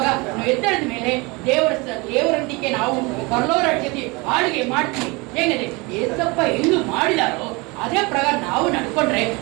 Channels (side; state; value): left; quieter; 26.3 dB